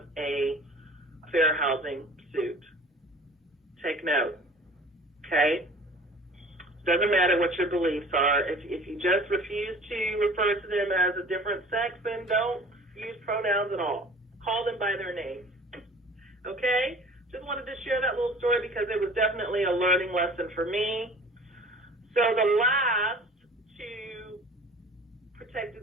a fair housing suit. Take note, okay? Doesn't matter what your beliefs are. If you just refuse to refer to them as a different sex, then don't use pronouns at all. Call them by their name, okay? Just wanted to share that little story because it was definitely a learning lesson for me. So the last two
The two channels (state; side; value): normal; both; correlation 0.46